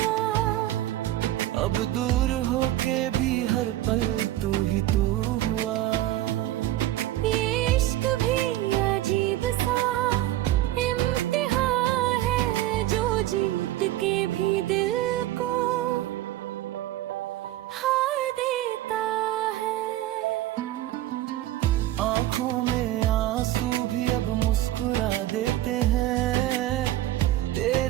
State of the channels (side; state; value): left; quieter; 14.7 dB